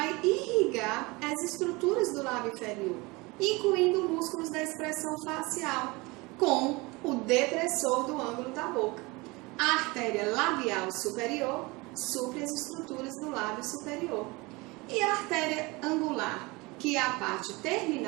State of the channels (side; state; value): left; quieter; 24.4 dB